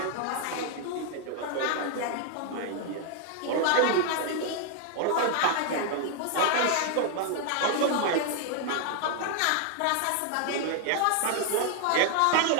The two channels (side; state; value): both; different; correlation 0.00